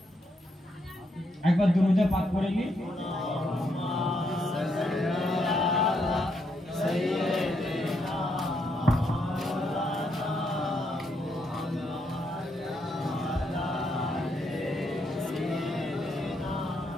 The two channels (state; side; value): normal; both; correlation 0.78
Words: একবার দুরূদে পাক করে নি